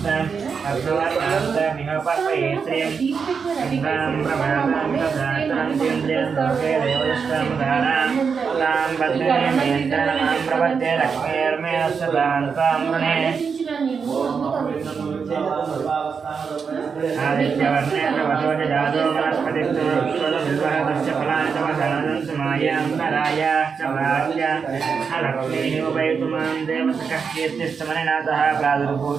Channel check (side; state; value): left; quieter; 5.9 dB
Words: अर्धवर्णान्तमिह पर्पये श्रियं इन्द्रां प्रभातां तथातरन्तीन्द्रियं लोके देवदष्टामुदारां तां पद्मिनीं यन्त्रमां प्रपद्ये लक्ष्मीर्मे सदां तां वृणे आदित्यवर्णेन वधोज जातो वनस्पतिस्तु विश्वदविर्वहतस्य फलानि तव दानन्तु मायान्तरायाश्च प्राच्य लक्ष्मीः उपैतुमां देवतकः कीर्तिस्तमनिनाथः